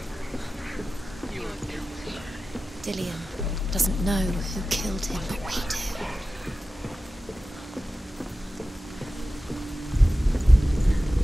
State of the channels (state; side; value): normal; both; correlation 0.95